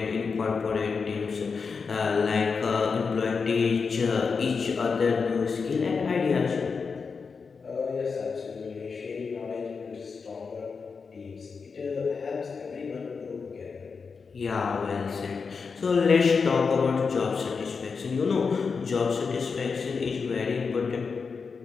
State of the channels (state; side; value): quieter; right; 5.2 dB